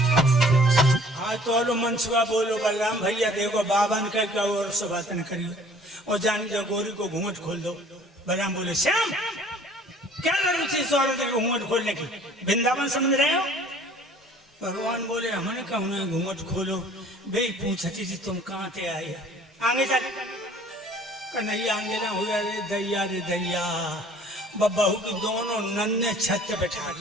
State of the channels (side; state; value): both; normal; correlation 0.53